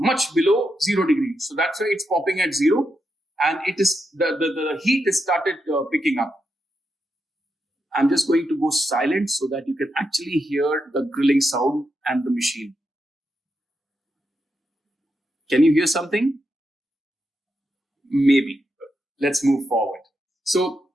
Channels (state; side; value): normal; both; correlation 0.84